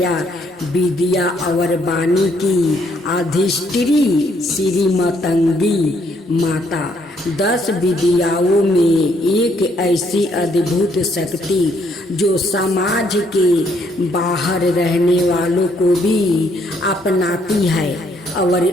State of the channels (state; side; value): normal; both; correlation 0.70